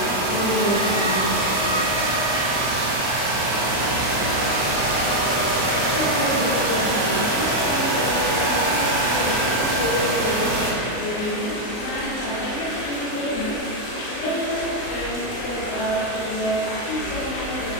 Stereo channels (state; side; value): late; right; 38 ms